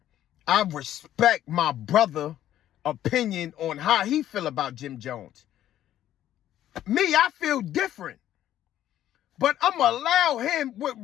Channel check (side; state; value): right; quieter; 12.1 dB